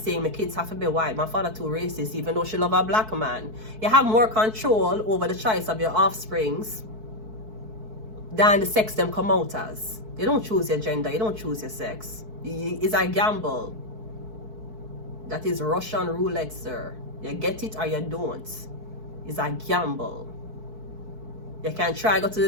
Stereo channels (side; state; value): left; late; 4.6 ms